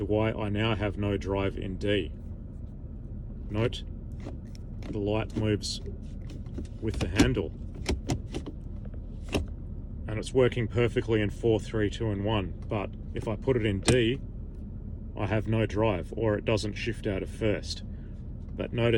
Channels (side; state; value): both; identical; correlation 1.00